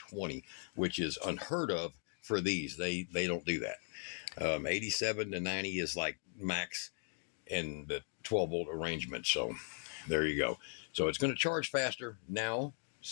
which is unheard of for these. They don't do that. 87 to 90 is like max in the 12 volt arrangement. So there you go. So it's going to charge faster now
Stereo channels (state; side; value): silent; right; 52 dB below the other